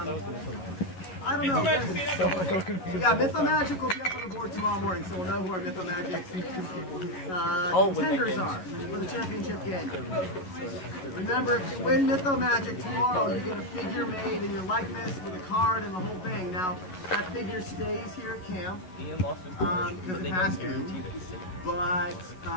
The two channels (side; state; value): right; late; 11 ms